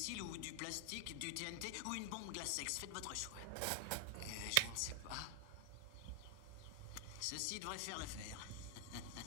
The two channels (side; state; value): both; different; correlation 0.00